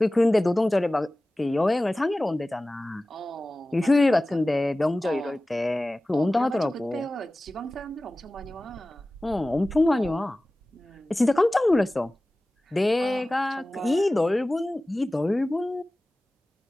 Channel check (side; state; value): both; normal; correlation 0.97